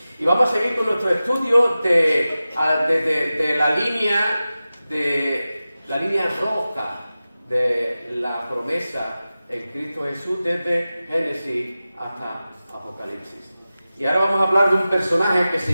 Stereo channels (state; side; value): inverted; both; correlation -0.95